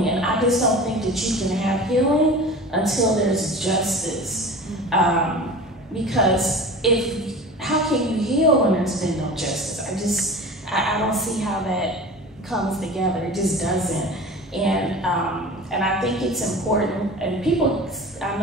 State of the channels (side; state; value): both; normal; correlation 0.36